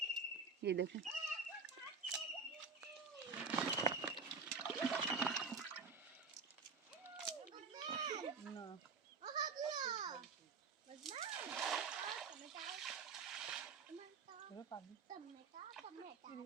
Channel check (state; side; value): quieter; left; 4.9 dB